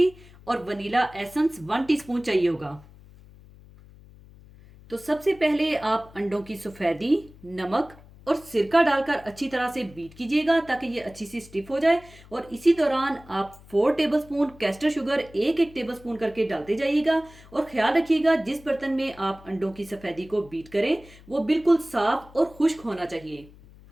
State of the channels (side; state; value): left; noise; hum, 22 dB below the sound